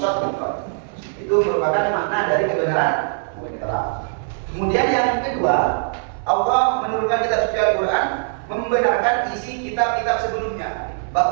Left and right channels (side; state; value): left; silent; 61 dB below the other